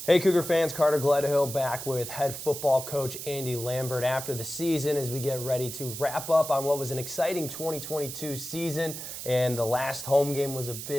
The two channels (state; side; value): noise; right; hiss, 8 dB below the sound